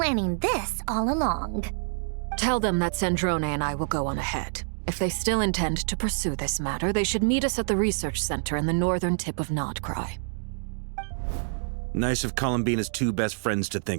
this all along. Tell them that Sandrone and I will go on ahead. If they still intend to pursue this matter, they should meet us at the research center in the northern tip of Nodcry. Nice of Columbina's two best friends to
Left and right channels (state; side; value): silent; left; digital silence